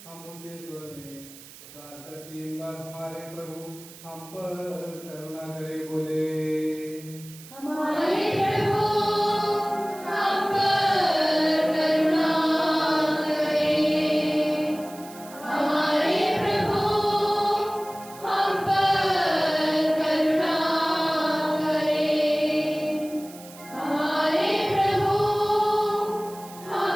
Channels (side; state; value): right; noise; hiss, 19 dB below the sound